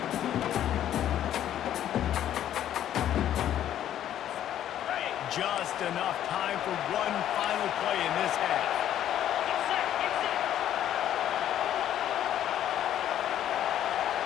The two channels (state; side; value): quieter; right; 11.2 dB